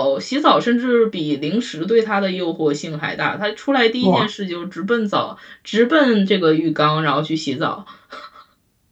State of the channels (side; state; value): both; identical; correlation 1.00